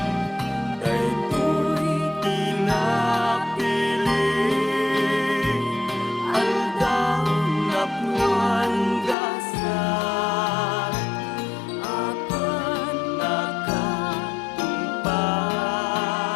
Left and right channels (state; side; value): drops out; right; at 9.2 s